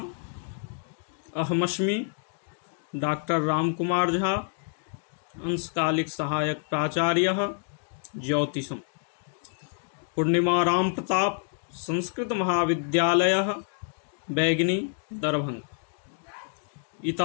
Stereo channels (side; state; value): right; silent; 59 dB below the other